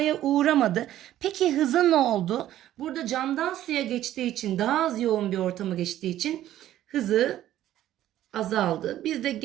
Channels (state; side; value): quieter; left; 12.9 dB